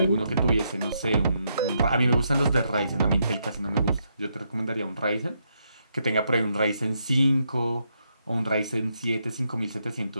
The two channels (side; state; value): both; inverted; correlation -0.79